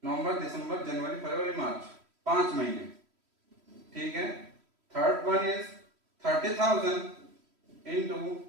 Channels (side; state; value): left; late; 3.1 ms